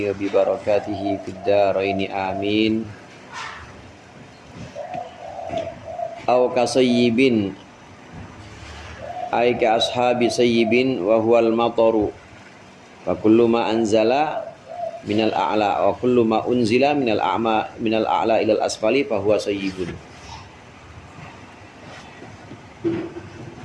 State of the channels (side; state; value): both; identical; correlation 1.00